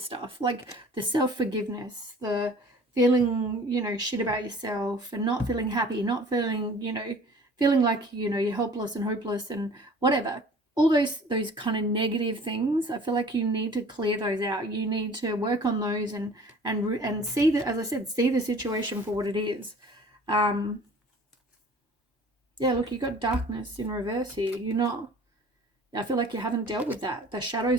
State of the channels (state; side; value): normal; both; correlation 0.48